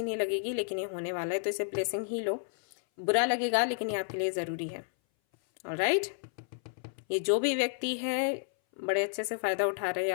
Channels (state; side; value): silent; right; 57 dB below the other